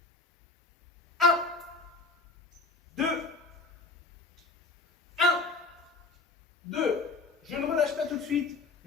1, 2, 1, 2. Je ne relâche pas tout de suite.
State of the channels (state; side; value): quieter; right; 3.7 dB